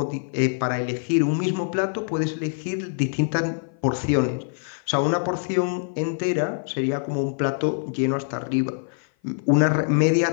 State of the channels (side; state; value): right; silent; 55 dB below the other